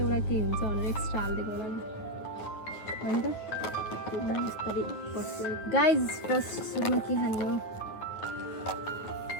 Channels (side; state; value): right; late; 9.3 ms